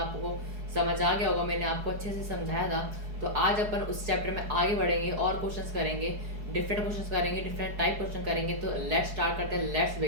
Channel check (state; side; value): late; left; 4.7 ms